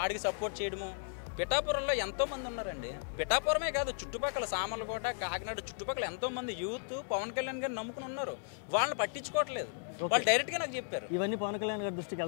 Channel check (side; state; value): right; silent; 54 dB below the other